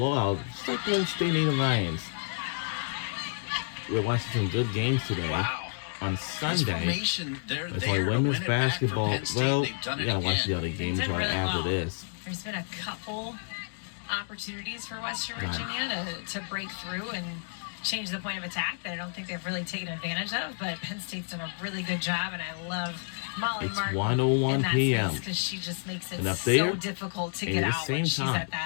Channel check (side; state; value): right; silent; digital silence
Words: Just like Penn State Nittany Lions. We're watching some good games today. Wow. On Sunday. Formation, It's like women's basketball. Well, you gotta watch the other They've games done right really after well. this. There's been a couple opportunities for Western Virginia to break through and change the point of attack that I don't think they've really taken advantage of, but Penn State's done a really good job, and I love Molly It's Martin 1:01 p.m. because she just makes it And up so there, difficult to at get the out same when she's time. at